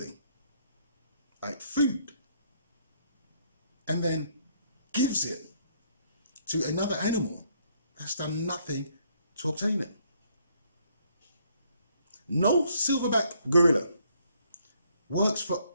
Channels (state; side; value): inverted; both; correlation -0.68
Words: like food and then gives it to another animal that's done nothing to obtain it. No silverback gorilla works for